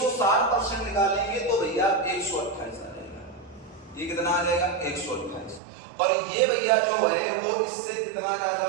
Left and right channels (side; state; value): left; drops out; at 5.6 s